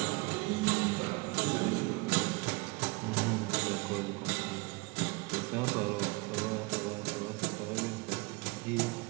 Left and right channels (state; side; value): quieter; left; 26.1 dB